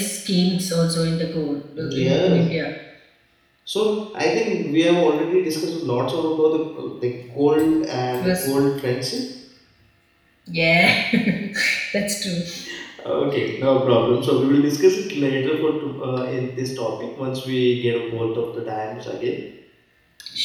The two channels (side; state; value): both; identical; correlation 1.00